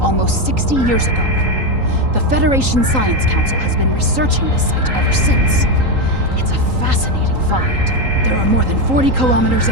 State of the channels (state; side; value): late; left; 3.8 ms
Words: 60 years ago. The Federation Science Council has been researching this site ever since. It's a fascinating find. There are more than 40 kilometers